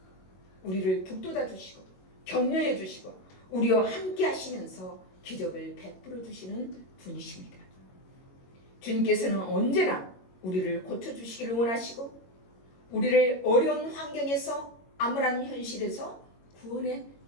우리를 북돋아 주시고 격려해 주시고 우리와 함께 하시면서 기적을 베풀어 주시는 분이십니다. 주님께서는 언제나 우리를 고쳐주시기를 원하시고 우리를 어려운 환경에서 암울한 현실에서 구원해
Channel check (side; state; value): right; late; 22 ms